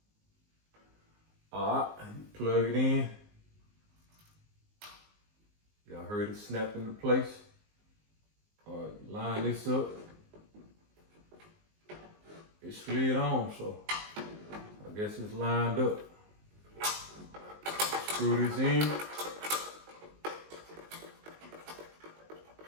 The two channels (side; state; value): left; late; 19 ms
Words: Alright, plug it in. Y'all heard it snap into place. Alright, line this up. It slid on, so I guess it's lined up. Screw this in.